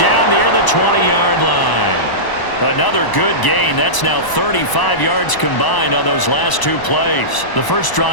near the 20-yard line. Another good gain. That's now 35 yards combined on those last 2 plays. The first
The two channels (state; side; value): late; right; 1.0 ms